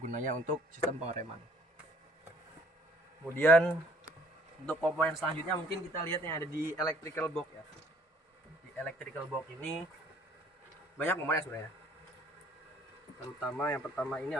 untuk sistem pengereman. Kemudian untuk komponen selanjutnya mungkin kita lihat yang ada di electrical box ya. Di electrical box ini banyak komponen sebenarnya. Terutama yang pertama ini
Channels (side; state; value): both; normal; correlation 0.59